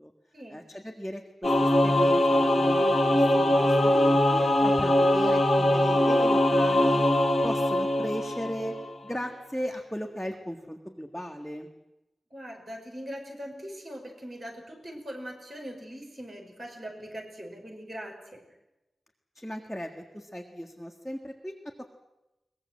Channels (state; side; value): normal; both; correlation 0.91